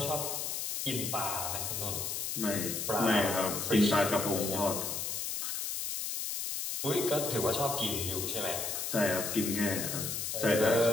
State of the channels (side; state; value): left; noise; hiss, 3 dB below the sound